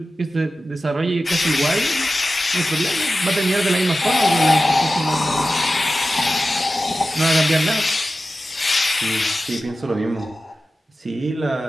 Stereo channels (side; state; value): both; normal; correlation 0.94